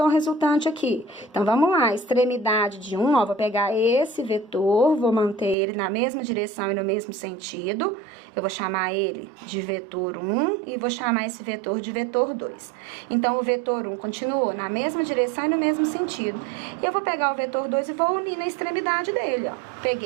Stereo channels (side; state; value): left; drops out; at 5.6 s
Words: resultante aqui? Então, vamos lá, extremidade de 1, ó, vou pegar esse vetor, vou manter ele na mesma direção e no mesmo sentido. Eu vou chamar ele de vetor 1 e vou chamar esse vetor de vetor 2. Então, o vetor 1 continuou na mesma direção e no mesmo sentido. E eu vou pegar o vetor 2 e vou unir na extremidade dele, ó.